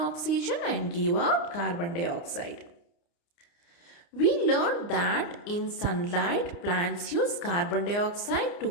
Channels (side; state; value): right; late; 29 ms